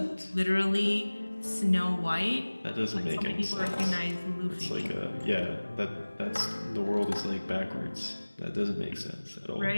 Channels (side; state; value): both; inverted; correlation -1.00